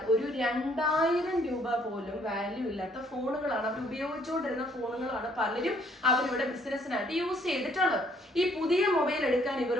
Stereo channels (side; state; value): both; normal; correlation 0.64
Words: ഒരു 2,000 രൂപ പോലും വാല്യൂ ഇല്ലാത്ത ഫോണുകളാണ്, അവർ ഉപയോഗിച്ചുകൊണ്ടിരുന്ന ഫോണുകളാണ് പലരും അവരിവിടെ ബിസിനസ്സിനായിട്ട് യൂസ് ചെയ്തിട്ടുള്ളത്. ഈ പുതിയ മൊബൈൽ എടുക്കാൻ